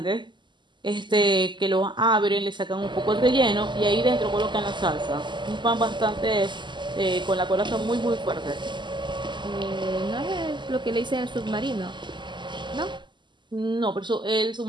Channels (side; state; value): left; late; 0.22 ms